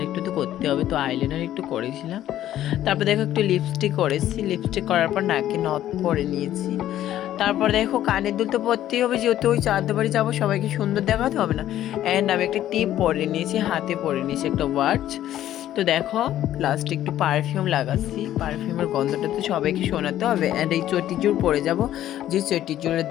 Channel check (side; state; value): right; quieter; 12.5 dB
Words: একটু তো করতে হবে, তো আইলাইনার একটু করেছিলাম। তারপর দেখো, একটু লিপস্টিক করেছি, লিপস্টিক করার পর নাকে নথ পরে নিয়েছি। তারপর দেখো, কানের দুল তো পরতেই হবে, যেহেতু ওই চাঁদ বাড়ি যাবো, সবাইকে সুন্দর দেখাতে হবে না। অ্যান্ড আমি একটা টিপ পরে নিয়েছি, হাতে পরে নিয়েছি একটা ওয়াচ। তো দেখো, লাস্টে একটু পারফিউম লাগাচ্ছি, পারফিউমের গন্ধটা তো সবাইকে শোনাতে হবে। অ্যান্ড এই চটিজুড় পরে যাব, যে চটিজুড়ের